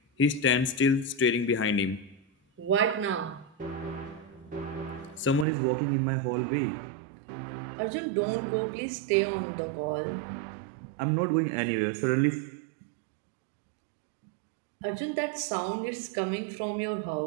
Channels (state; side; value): drops out; left; at 5.5 s